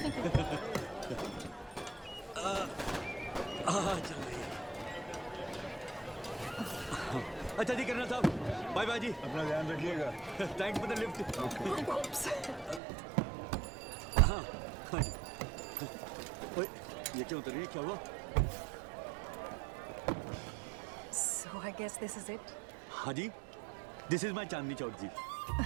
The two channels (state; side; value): drops out; left; at 12.8 s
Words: चल रही है। अच्छा जी कर्नल साहब, बाय बाय जी। अपना ध्यान रखिएगा। Thanks for the lift. हाँ जी। ओए ये क्या उतर रही है, क्या हुआ? So I guess this is it. हाँ जी, this is my Chandni Chowk जी।